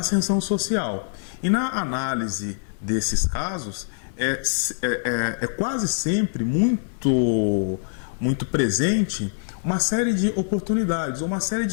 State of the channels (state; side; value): silent; right; 62 dB below the other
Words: social. E na análise desses casos, é quase sempre muito presente uma série de oportunidades, uma série